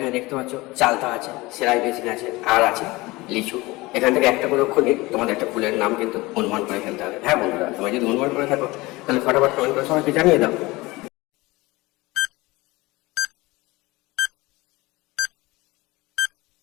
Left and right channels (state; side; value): quieter; right; 21.5 dB